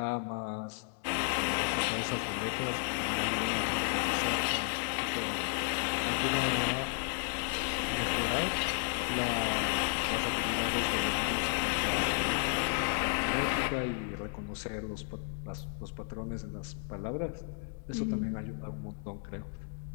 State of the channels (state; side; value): silent; right; 56 dB below the other